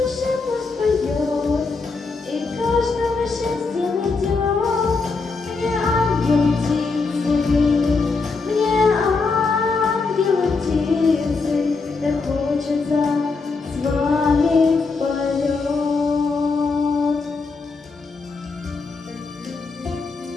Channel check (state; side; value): quieter; right; 4.2 dB